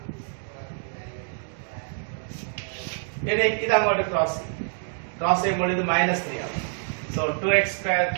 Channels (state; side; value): silent; left; 61 dB below the other